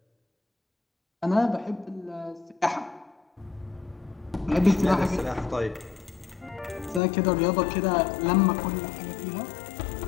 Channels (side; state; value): right; drops out; at 7.0 s